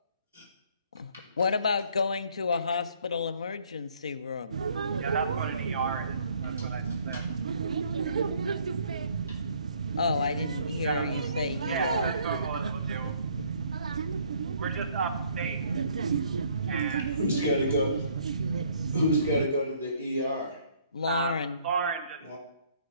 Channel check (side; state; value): both; inverted; correlation -0.63